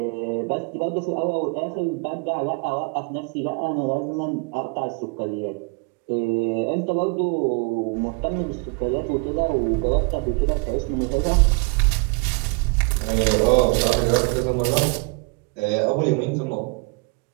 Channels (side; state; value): left; quieter; 31.7 dB